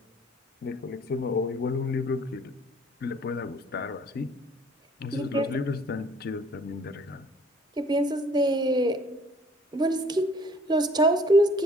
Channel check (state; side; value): normal; both; correlation 0.56